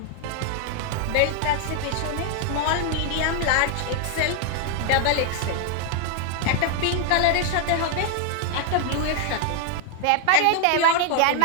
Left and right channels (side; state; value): both; different; correlation 0.00